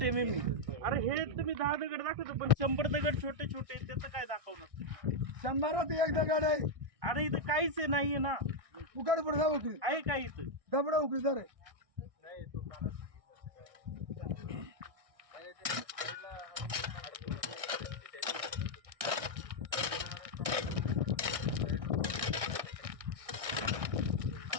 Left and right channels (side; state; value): left; late; 1.6 ms